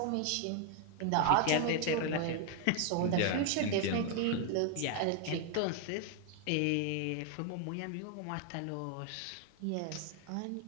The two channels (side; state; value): both; different; correlation 0.00